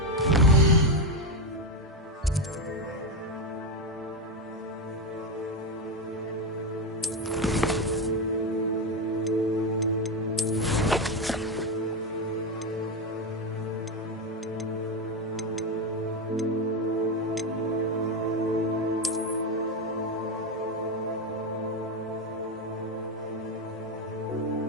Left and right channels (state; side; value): normal; both; correlation 0.10